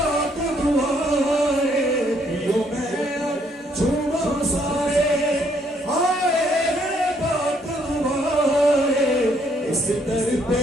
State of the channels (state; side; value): normal; both; correlation 0.69